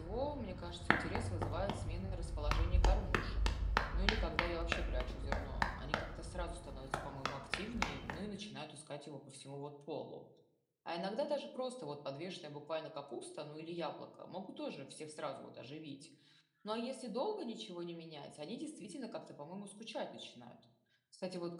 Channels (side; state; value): both; identical; correlation 1.00